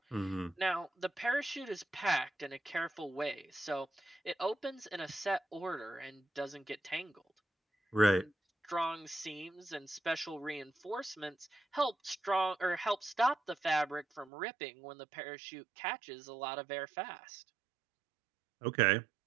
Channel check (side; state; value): left; drops out; at 14.3 s